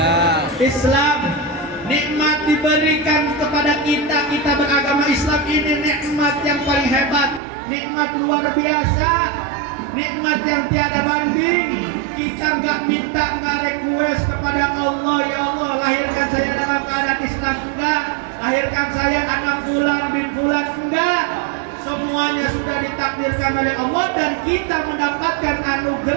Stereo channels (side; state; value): left; drops out; at 7.4 s